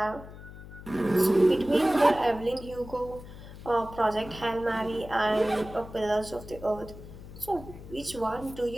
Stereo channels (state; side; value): noise; left; hum, 15 dB below the sound